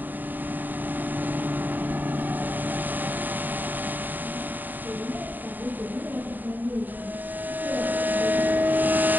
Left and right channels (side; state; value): left; late; 0.088 ms